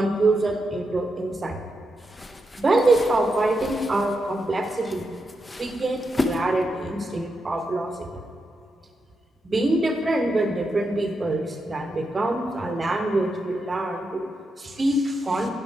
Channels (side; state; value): both; normal; correlation 0.85